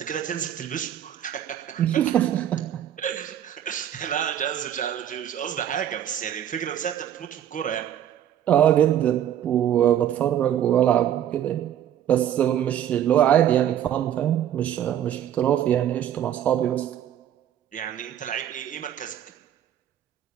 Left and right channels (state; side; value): quieter; left; 10.6 dB